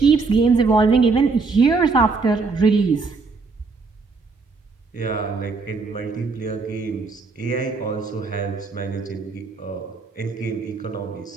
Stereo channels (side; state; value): left; quieter; 4.3 dB